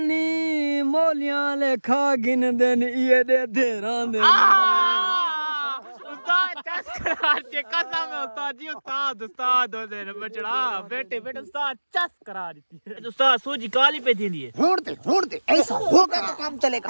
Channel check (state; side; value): inverted; both; correlation -1.00